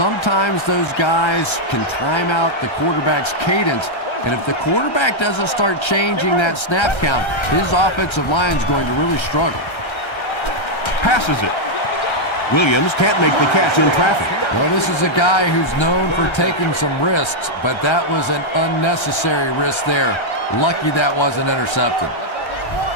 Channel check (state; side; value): late; right; 1.3 ms